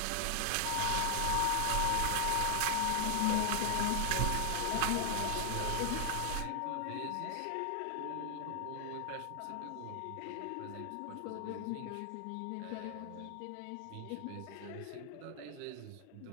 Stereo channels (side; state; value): both; different; correlation 0.00